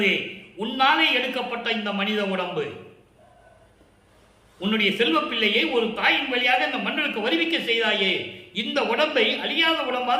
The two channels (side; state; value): both; identical; correlation 1.00